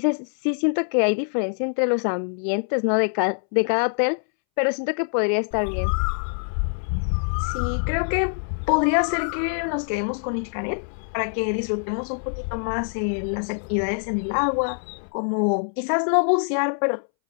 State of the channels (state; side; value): silent; right; 62 dB below the other